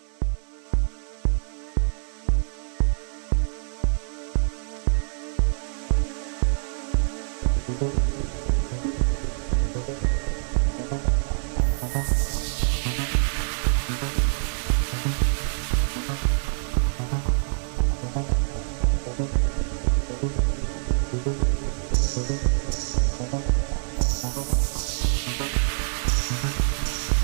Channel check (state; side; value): silent; left; digital silence